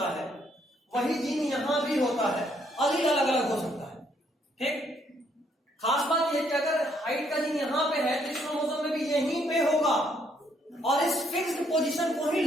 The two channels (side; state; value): both; normal; correlation 0.70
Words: है वही जीन यहां भी होता है, अलील अलग अलग हो सकता है, ठीक? खास बात यह कि अगर हाइट का जीन यहां पे है तो इस क्रोमोसोम में भी यहीं पे होगा, और इस फिक्स्ड पोजीशन को ही